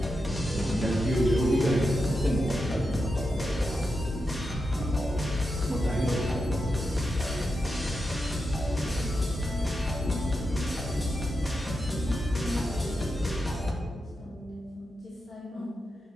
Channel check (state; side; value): normal; both; correlation 0.87